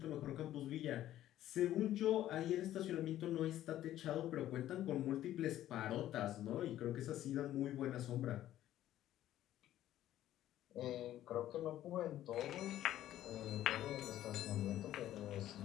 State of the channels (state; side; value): quieter; right; 13.0 dB